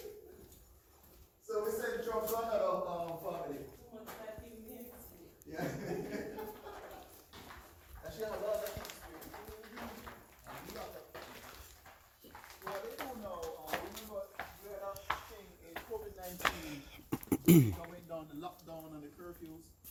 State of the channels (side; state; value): both; identical; correlation 1.00